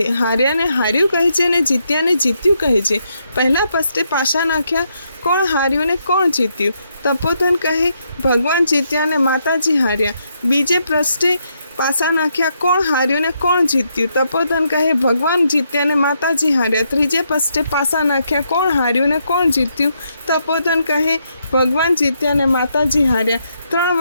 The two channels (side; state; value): both; inverted; correlation -0.78